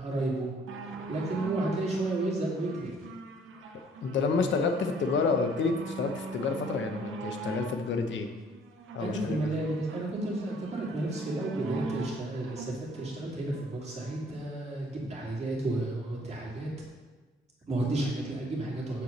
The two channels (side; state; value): both; normal; correlation 0.59